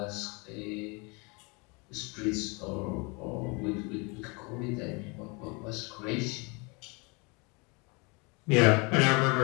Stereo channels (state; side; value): quieter; right; 29.7 dB